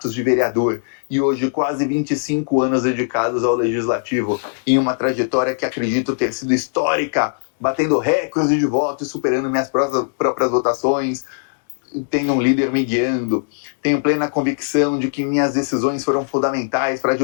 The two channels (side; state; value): right; silent; digital silence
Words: de vereador e hoje quase 25 anos dedicados ao legislativo, em uma trajetória que acredito ter sido histórica, batendo recordes de votos, superando minhas próprias votações. Tenho um líder me guiando, tenho plena convicção de que minhas decisões foram fundamentais para